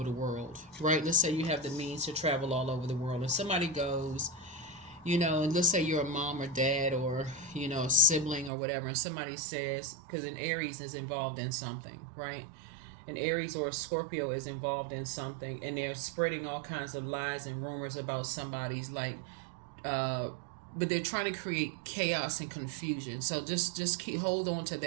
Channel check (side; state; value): left; drops out; at 8.5 s